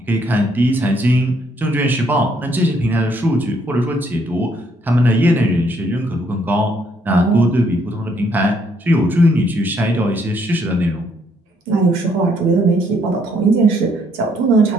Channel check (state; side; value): normal; both; correlation 0.69